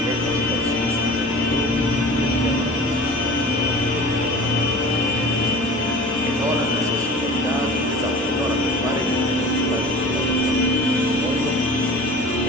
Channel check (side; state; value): both; normal; correlation 0.40